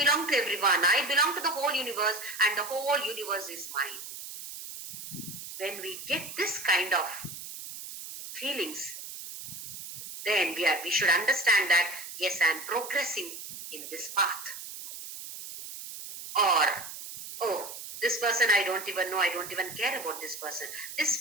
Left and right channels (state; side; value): noise; right; hiss, 11 dB below the sound